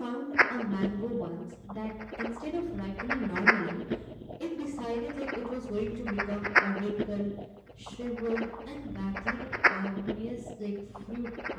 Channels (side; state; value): both; identical; correlation 1.00